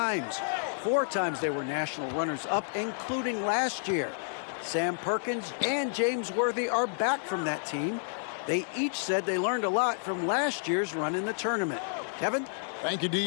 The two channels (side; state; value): right; silent; digital silence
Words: 4 times they were national runners-up, including last year. Sam Perkins and James Worthy are back from that team. They each said they learned a lot from last year's run in the tournament. Kevin? Thank you,